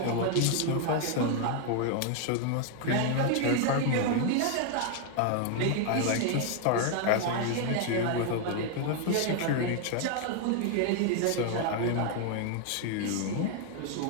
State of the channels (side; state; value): both; different; correlation 0.00